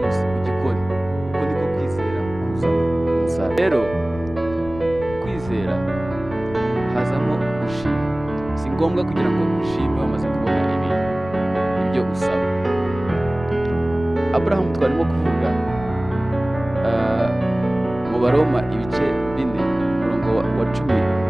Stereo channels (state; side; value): noise; left; rumble, 14 dB below the sound